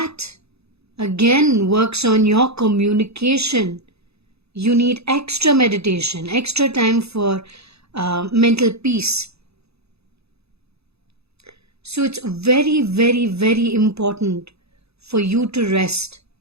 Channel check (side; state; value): left; late; 0.79 ms